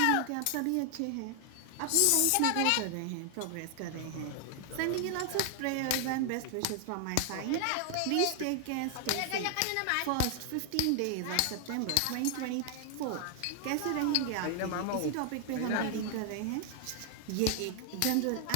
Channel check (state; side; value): different; both; correlation 0.00